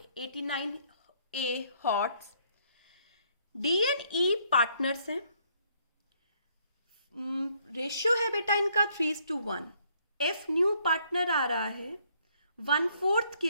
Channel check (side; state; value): both; inverted; correlation -0.68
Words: 89th A hots. D and E partners हैं. रेशियो है बेटा इनका 3:1. एफ न्यू पार्टनर आ रहा है 1/4 के